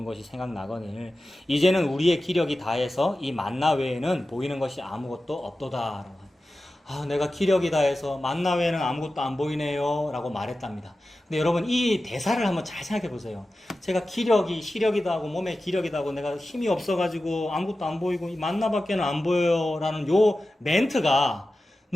것이 생각나거늘 이제는 우리의 기력이 다해서 이 만나 외에는 보이는 것이 아무것도 없도다. 아, 내가 기력이 다해서 만나 외에는 아무것도 안 보이네요 라고 말했답니다. 근데 여러분 이 대사를 한번 잘 생각해 보세요. 제가 시력이다 하고 몸에 기력이다 하고 내가 힘이 없어가지고 아무것도 안 보이고 이 만나밖에는 안 보여요 라는 요 멘트가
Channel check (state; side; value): normal; both; correlation 0.94